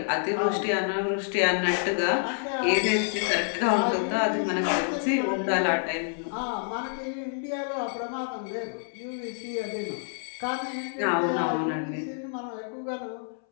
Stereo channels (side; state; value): right; silent; 59 dB below the other